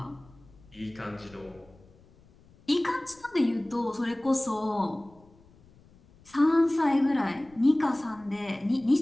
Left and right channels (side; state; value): left; noise; rumble, 27 dB below the sound